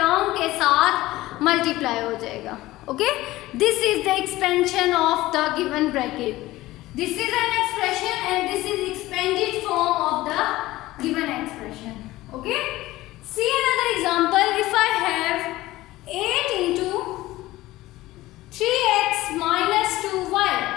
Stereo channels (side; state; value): right; quieter; 17.4 dB